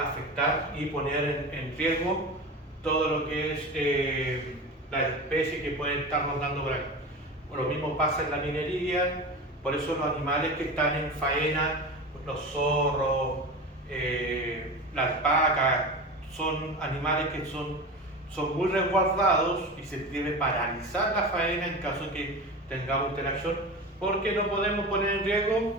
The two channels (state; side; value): normal; both; correlation 0.29